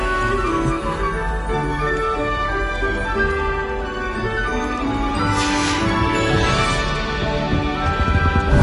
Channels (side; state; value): both; identical; correlation 1.00